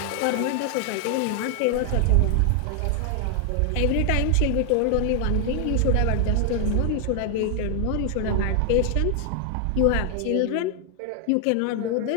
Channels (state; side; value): different; both; correlation 0.00